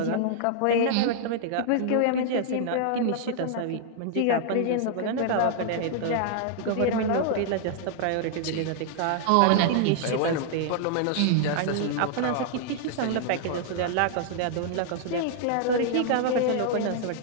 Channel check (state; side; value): different; both; correlation -0.01